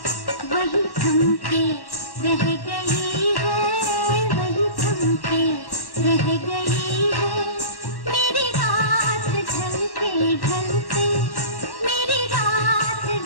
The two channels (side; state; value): right; late; 1.1 ms